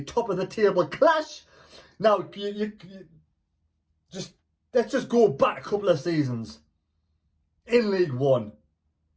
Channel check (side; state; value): both; identical; correlation 1.00